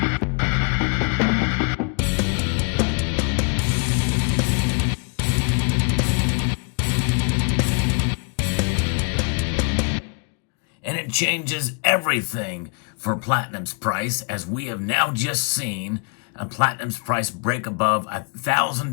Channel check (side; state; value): right; quieter; 37.6 dB